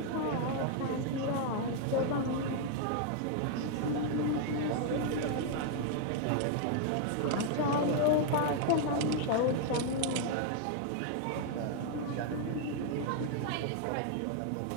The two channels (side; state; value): both; different; correlation 0.00